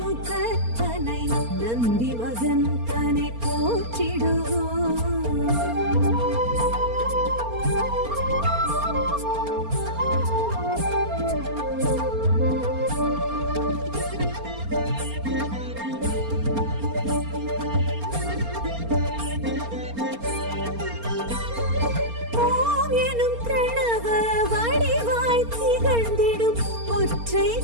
முகத்தனை நந்தி மகன் தனை போற்றிடுவோம்.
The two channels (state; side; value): late; left; 4.3 ms